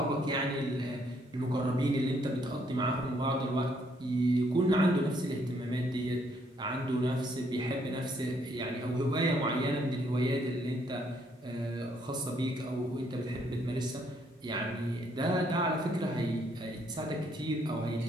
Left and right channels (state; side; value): normal; both; correlation 0.70